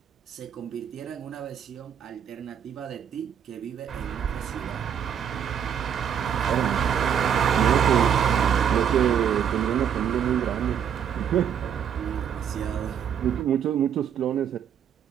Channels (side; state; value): left; quieter; 8.4 dB